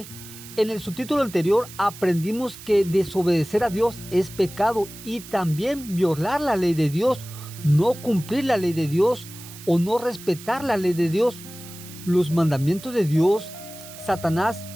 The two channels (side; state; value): right; noise; hiss, 16 dB below the sound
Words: en el subtítulo anterior aprendimos que desobedecer a Dios es pecado y también violar la ley de Dios, no cumplir la ley de Dios o no respetar la ley de Dios. Los mandamientos de Dios, Satanás